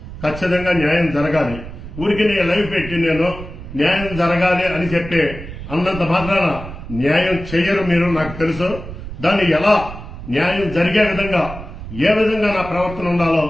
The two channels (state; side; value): noise; right; rumble, 11 dB below the sound